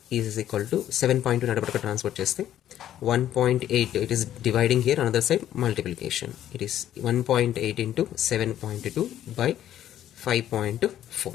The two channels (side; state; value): right; quieter; 11.6 dB